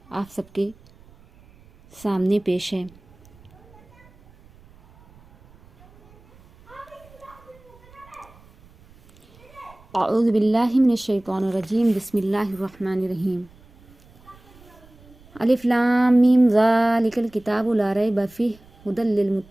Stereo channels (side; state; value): right; noise; rumble, 26 dB below the sound